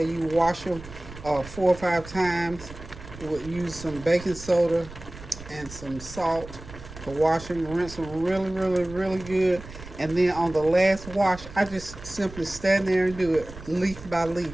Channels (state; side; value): noise; right; rumble, 15 dB below the sound